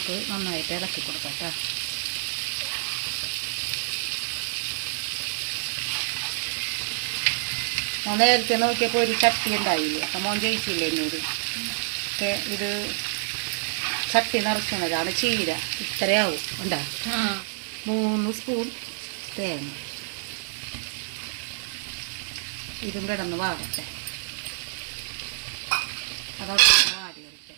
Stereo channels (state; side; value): silent; left; digital silence